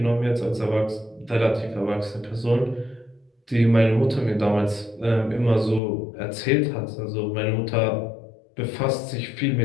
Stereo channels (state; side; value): drops out; right; at 5.8 s